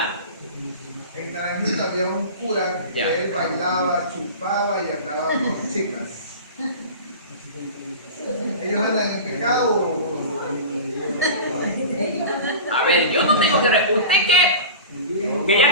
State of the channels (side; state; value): both; inverted; correlation -0.33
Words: había un cura que Ya. él bailaba, chupaba y andaba con chicas. ¿Ellos andan en pecado? A ver, yo no tengo que... ¿Usted que